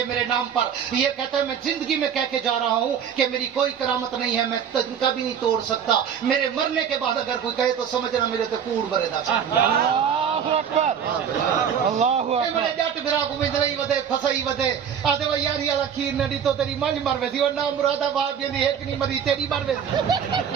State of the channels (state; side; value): quieter; left; 8.0 dB